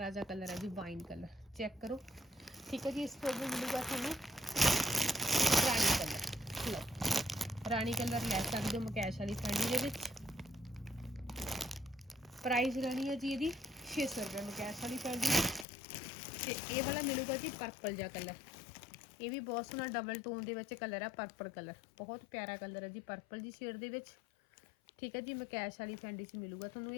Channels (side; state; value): right; drops out; at 15.7 s